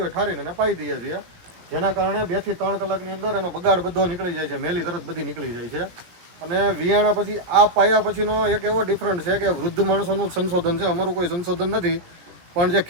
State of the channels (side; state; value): left; late; 17 ms